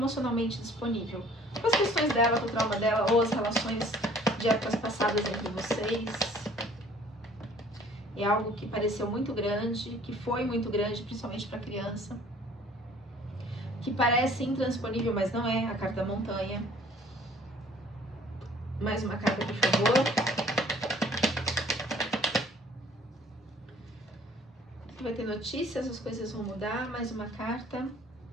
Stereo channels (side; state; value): both; normal; correlation 0.54